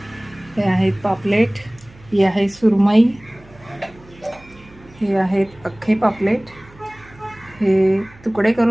हे आहेत पापलेट, ही आहे सुरमई, हे आहेत अख्खे पापलेट, हे तुकडे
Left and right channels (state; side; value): noise; right; hum, 24 dB below the sound